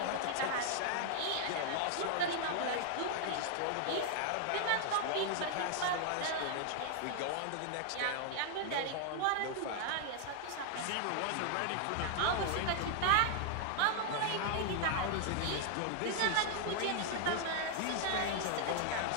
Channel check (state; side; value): different; both; correlation 0.00